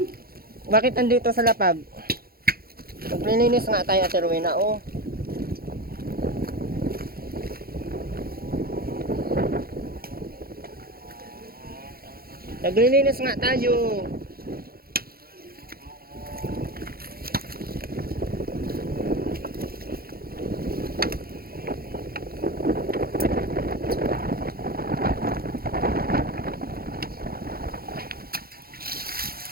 Bakit andito sa lapag? Maglilinis nga tayo, Ate Rowena, oh. Naglilinis nga tayo.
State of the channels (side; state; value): left; late; 0.44 ms